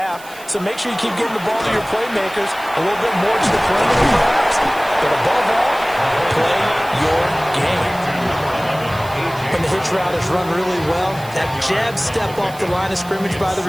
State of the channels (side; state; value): right; noise; hiss, 19 dB below the sound